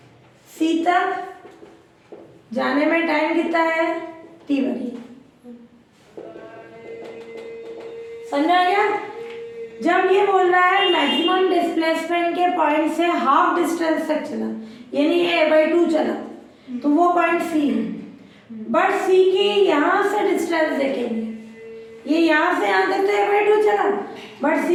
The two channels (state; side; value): identical; both; correlation 1.00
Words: सी तक जाने में टाइम कितना है t1। समझ आ गया। जब ये बोल रहा है मैक्सिमम डिस्प्लेसमेंट के पॉइंट से हाफ डिस्टेंस तक चला, यानी a/2 चला, तो वो पॉइंट सी है। बट सी की यहाँ से डिस्टेंस देखेंगे, ये यहाँ से यहाँ तक तो a/2 चला, बट